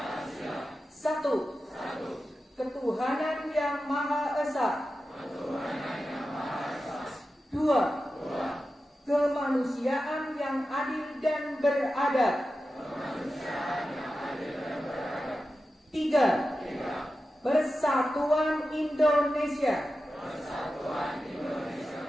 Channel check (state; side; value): normal; both; correlation 0.92